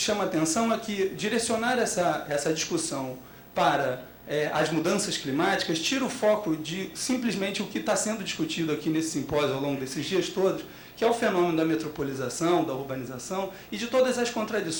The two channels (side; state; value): both; identical; correlation 1.00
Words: a atenção é que direcionar essa discussão para as mudanças climáticas tira o foco de simplesmente o que está sendo discutido aqui nesse simpósio ao longo desses dias todos, que é o fenômeno da metropolização, da urbanização e de todas as